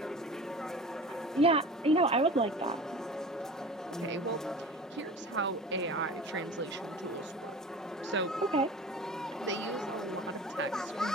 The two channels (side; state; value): both; normal; correlation 0.38